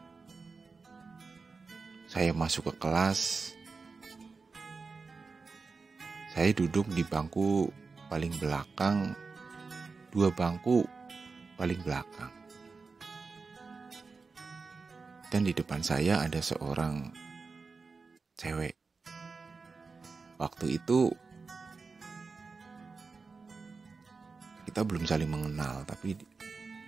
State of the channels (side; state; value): left; quieter; 4.5 dB